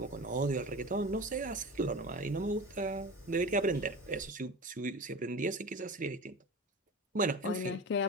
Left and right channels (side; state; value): both; normal; correlation 0.31